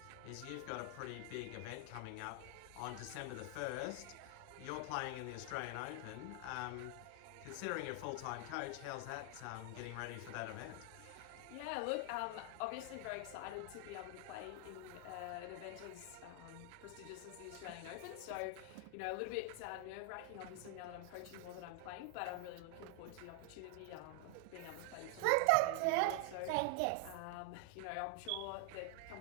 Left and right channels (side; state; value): both; different; correlation 0.00